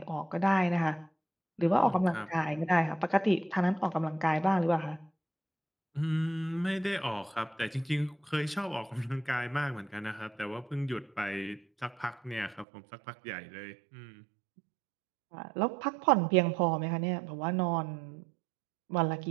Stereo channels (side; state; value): left; drops out; at 12.7 s